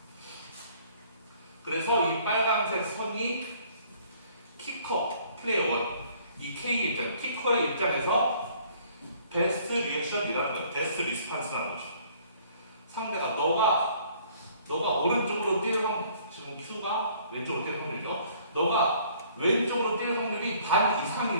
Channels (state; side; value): inverted; both; correlation -0.58